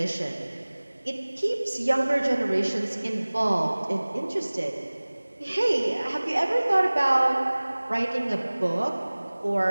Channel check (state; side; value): inverted; both; correlation -1.00